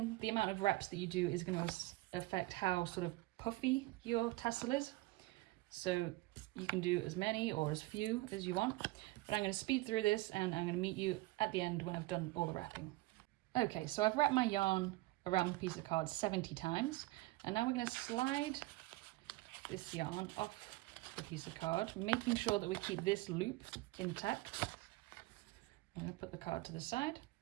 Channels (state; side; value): quieter; left; 19.8 dB